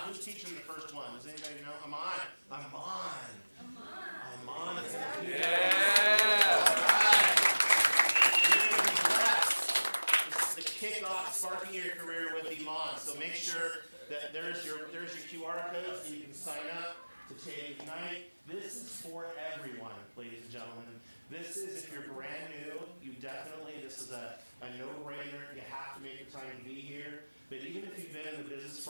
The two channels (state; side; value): inverted; both; correlation -1.00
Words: Who's teaching the first one? Does anybody know? Amon. Is in the Yeah. You're going to be blessed. This is the kickoff sparking your career with Iman. So make sure that there's your QR code so you can sign up to take Ignite. This is for everyone, ladies and gentlemen. This is, if you're brand new, this is a no-brainer. You have to make the time to be here. But even if you've been in the business